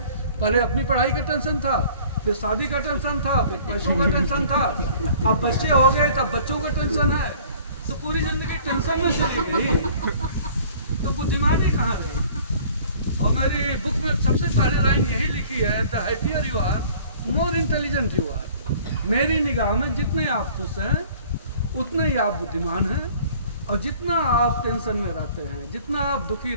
पहले अपनी पढ़ाई का टेंशन था, फिर शादी का टेंशन था, फिर पैसों का टेंशन था, अब बच्चे हो गए तब बच्चों का टेंशन है। तो पूरी जिंदगी टेंशन में चली गई, तो बुद्धिमानी कहाँ रही? और मेरी बुक में सबसे पहले लाइन यही लिखी है, the happier you are, more intelligent you are. मेरी निगाह में जितने आप खुश हैं उतने ही आप बुद्धिमान हैं, और जितना आप टेंशन में रहते हैं, जितना आप दुखी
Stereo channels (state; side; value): inverted; both; correlation -0.51